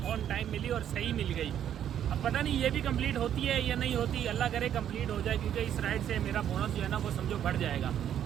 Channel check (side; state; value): left; quieter; 10.0 dB